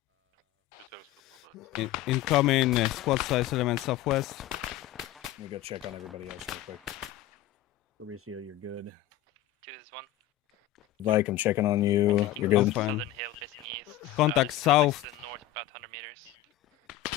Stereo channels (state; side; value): quieter; right; 13.6 dB